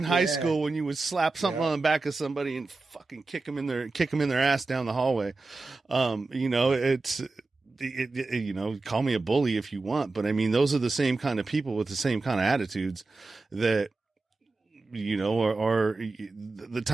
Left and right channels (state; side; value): quieter; left; 3.5 dB